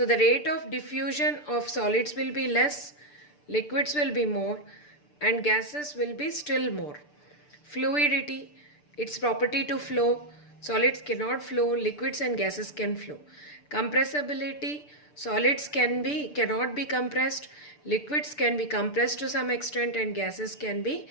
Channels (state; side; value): late; right; 6.8 ms